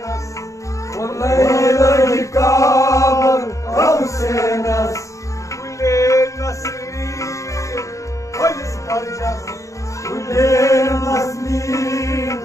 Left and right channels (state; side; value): late; right; 0.15 ms